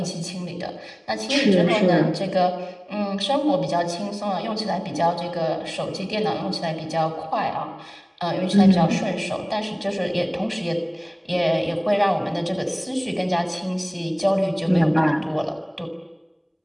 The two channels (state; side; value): identical; both; correlation 1.00